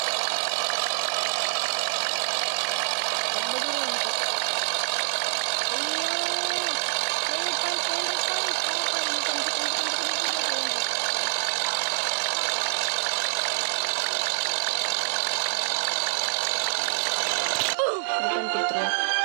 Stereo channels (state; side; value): silent; left; digital silence